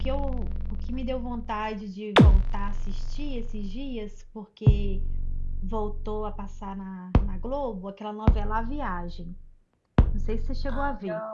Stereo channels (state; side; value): identical; both; correlation 1.00